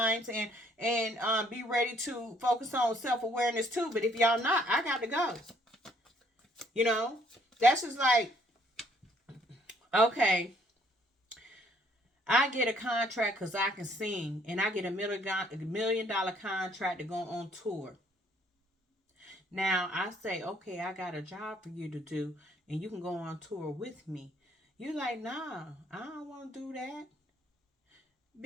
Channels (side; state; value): both; normal; correlation 0.65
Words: and be ready to focus on self-awareness too. But if y'all not, I got to go. You know? That's just like, okay, I get a contract because I can sing, and I get $1 million contract to go on tour. Now, I say, okay, I got a job for you to do, and you can go on tour with me. You're like, nah, I don't want to do that.